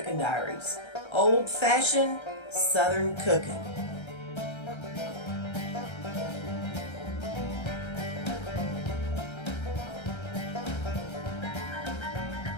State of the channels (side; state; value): right; late; 1.3 ms